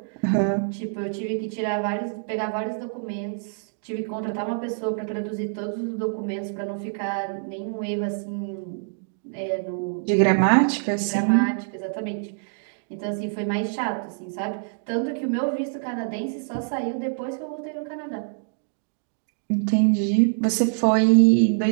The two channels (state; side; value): silent; left; digital silence